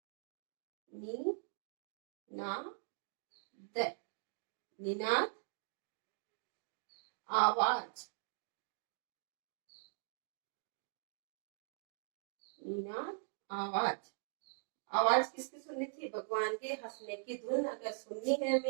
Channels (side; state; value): left; silent; digital silence